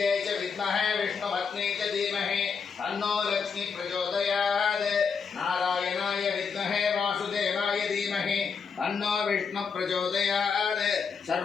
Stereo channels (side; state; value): right; quieter; 5.8 dB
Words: च विद्महे विष्णुपत्न्यै च धीमहि तन्नो लक्ष्मी प्रचोदयात् नारायणाय विद्महे वासुदेवाय धीमहि तन्नो विष्णु प्रचोदयात्